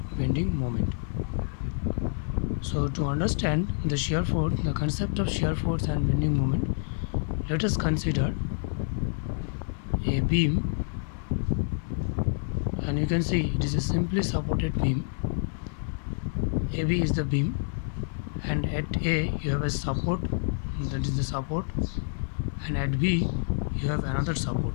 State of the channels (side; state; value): right; silent; 56 dB below the other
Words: bending moment. So to understand the shear force, the concept of shear force and bending moment, let us consider a beam, and you can see it is a simply supported beam. AB is the beam, and at A you have a support, that is the support, and at B you have another support.